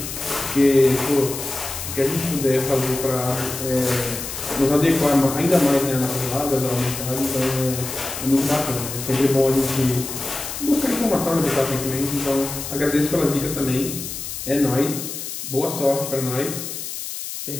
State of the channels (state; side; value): noise; left; hiss, 7 dB below the sound